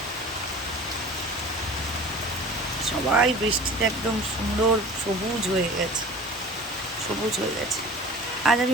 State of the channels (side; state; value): both; normal; correlation 0.40